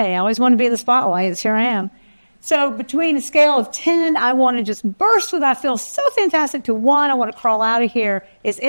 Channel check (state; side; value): inverted; both; correlation -1.00